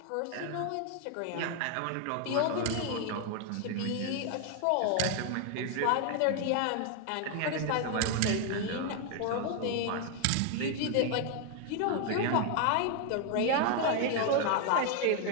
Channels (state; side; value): different; both; correlation 0.01